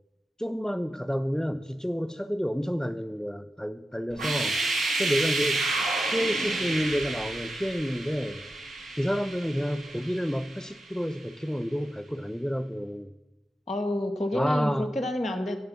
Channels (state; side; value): normal; both; correlation 0.91